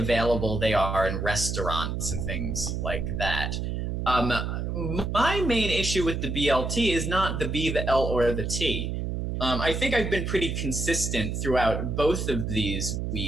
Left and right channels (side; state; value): right; noise; hum, 2 dB below the sound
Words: they are in restaurants and things like that. My main issue with the BLT is not the B, the L, or the T. I think I've been pretty consistent throughout both of these